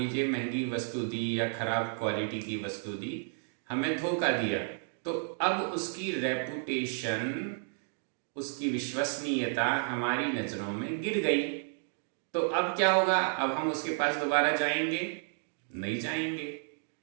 महंगी वस्तु दी या खराब क्वालिटी की वस्तु दी, हमें धोखा दिया, तो अब उसकी रेपुटेशन, उसकी विश्वसनीयता हमारी नजरों में गिर गई। तो अब क्या होगा, अब हम उसके पास दोबारा जाएंगे, नहीं जाएंगे,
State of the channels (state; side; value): silent; left; 56 dB below the other